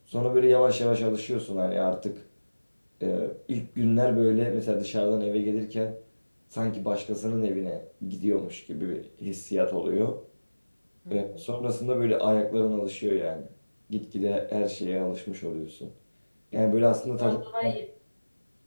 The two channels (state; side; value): inverted; both; correlation -1.00